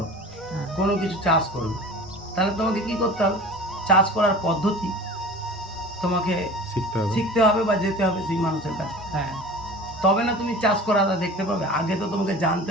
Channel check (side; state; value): both; normal; correlation 0.39